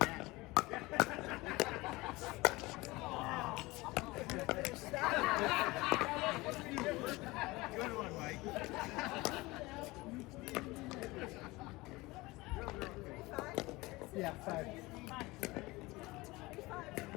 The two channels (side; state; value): right; quieter; 21.6 dB